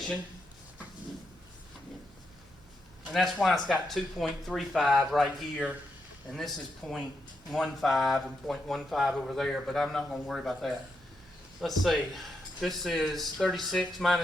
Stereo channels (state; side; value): normal; both; correlation 0.82